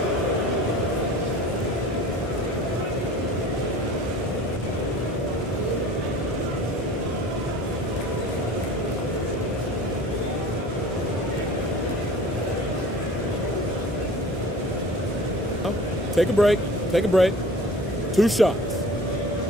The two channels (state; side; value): normal; both; correlation 0.43